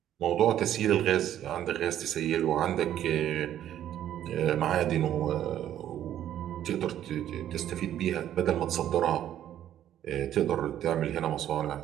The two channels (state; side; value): quieter; left; 11.3 dB